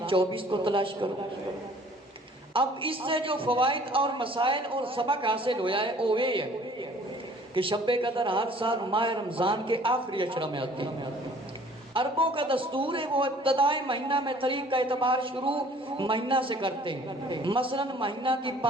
24 کو تلاش کرو. اب اس سے جو فوائد اور مسائل اور سبق حاصل ہوا ہے وہ یہ ہے کہ شب قدر ہر سال ماہ رمضان کے آخری عشرہ میں آتی ہے. عربوں کا دستور ہے وہ ابتدائی مہینہ میں تاریخ کا اعتبار شروع مہینہ سے کرتے ہیں. مثلا مہینہ کی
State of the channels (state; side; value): normal; both; correlation 0.53